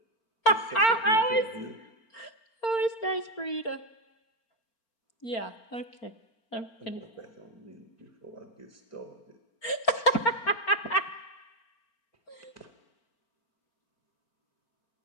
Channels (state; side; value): late; right; 4.4 ms